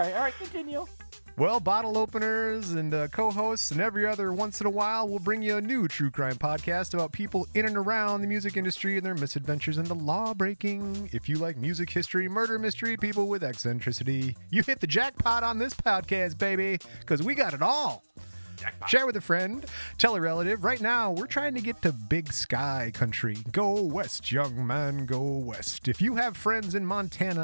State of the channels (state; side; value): inverted; both; correlation -1.00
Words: continue. Well, bottle openers and co-hosts and every other once in a while, we'll bring you a new true crime podcast about people in and around the music industry and their misadventures into law-breaking. If you like music history, murder mystery, people with eccentricity, you hit the jackpot on this podcast, baby, because we got it all. Jackpot. Share with a friend, tell a relative. Right now, we're trying to get to Big Sky country. Go west, young man, go west. If you have friends in